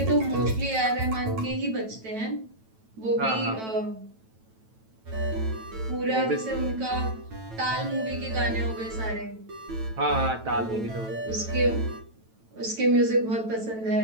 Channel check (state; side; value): late; left; 9.1 ms